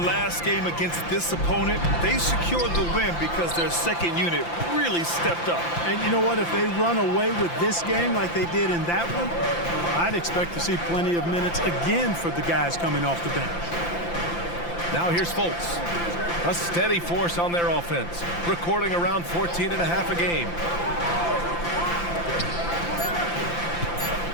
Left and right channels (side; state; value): right; late; 5.8 ms